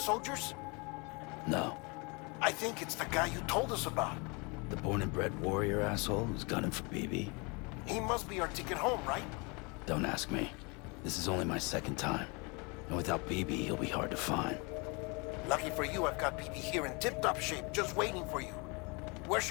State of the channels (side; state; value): right; quieter; 30.0 dB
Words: No. I think it's the guy you told us about. The born and bred warrior asshole who's gunning for BB? He must be our ticket home, right? Don't ask me. This is only my second time. And without BB, he'll be hard to find. Lucky for you, I've got BB here in tip-top shape, just waiting for you. Where